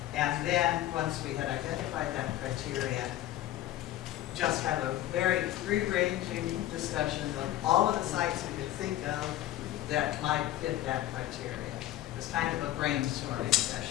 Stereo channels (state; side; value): quieter; right; 13.8 dB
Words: And then, once we had identified that criteria, just have a very free-ranging discussion of all of the sites we could think of that might fit that criteria. It was kind of a brainstorming